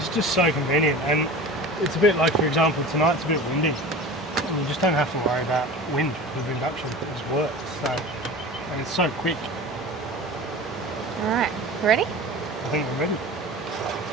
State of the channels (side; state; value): both; normal; correlation 0.35